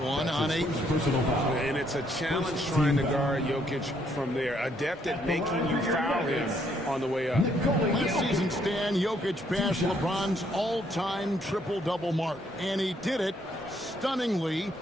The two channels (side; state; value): both; normal; correlation 0.70